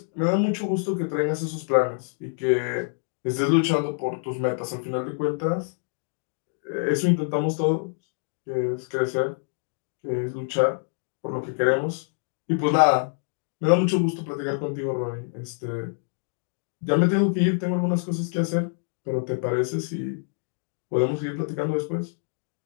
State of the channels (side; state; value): right; silent; 61 dB below the other